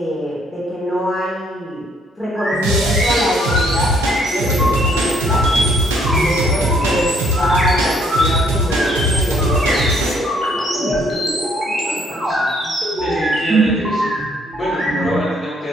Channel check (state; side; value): normal; both; correlation 0.66